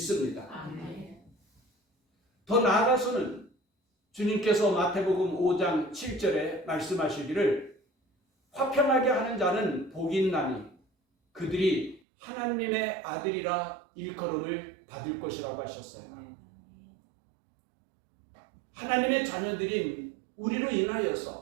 더 나아가서는 주님께서 마태복음 5장 7절에 말씀하시기를 화평하게 하는 자는 복이 있나니 그들이 하나님의 아들이라 일컬음을 받을 것이라고 하셨어요. 하나님의 자녀들인 우리로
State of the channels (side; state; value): left; drops out; at 12.0 s